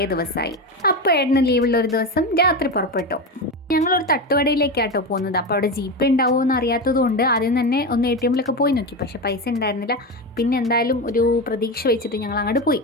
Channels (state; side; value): normal; both; correlation 0.18